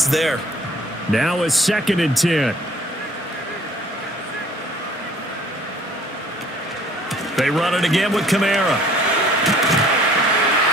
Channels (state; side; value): normal; both; correlation 0.55